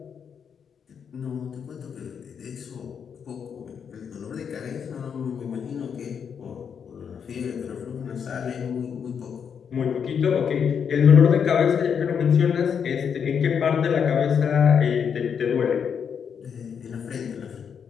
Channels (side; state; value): right; quieter; 7.2 dB